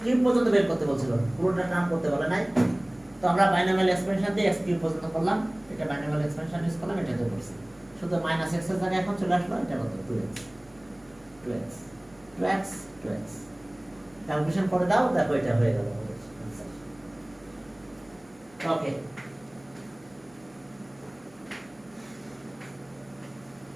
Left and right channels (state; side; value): noise; right; hum, 27 dB below the sound